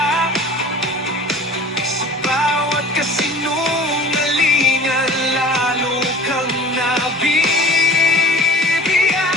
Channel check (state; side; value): normal; both; correlation 0.43